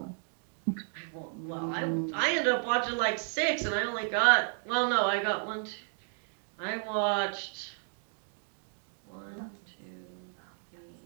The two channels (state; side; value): silent; left; 56 dB below the other